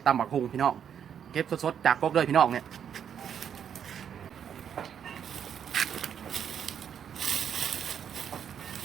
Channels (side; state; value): left; quieter; 8.4 dB